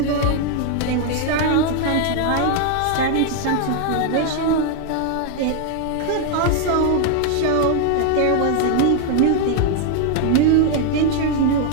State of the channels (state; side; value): different; both; correlation 0.00